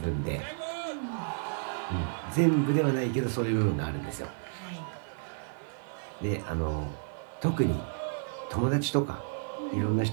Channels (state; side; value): silent; left; 57 dB below the other